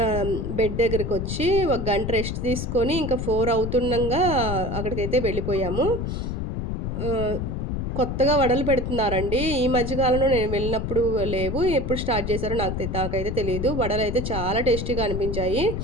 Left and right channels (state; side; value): noise; left; rumble, 3 dB below the sound